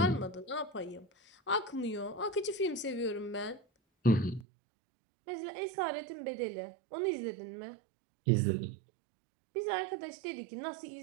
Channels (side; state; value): left; drops out; at 4.5 s